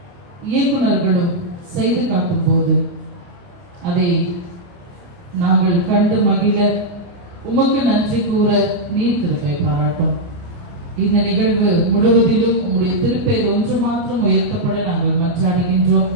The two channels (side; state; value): left; late; 29 ms